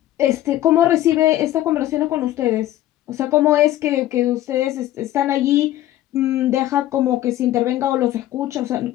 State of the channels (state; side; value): quieter; right; 13.9 dB